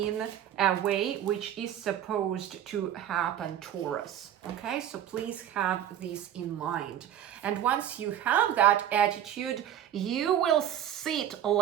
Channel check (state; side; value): quieter; left; 10.7 dB